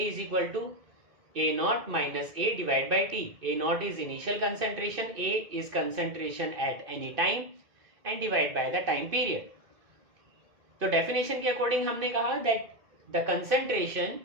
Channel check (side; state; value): left; late; 2.5 ms